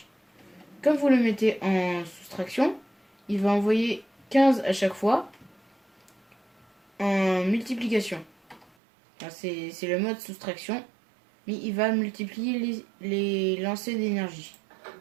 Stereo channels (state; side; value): drops out; left; at 8.7 s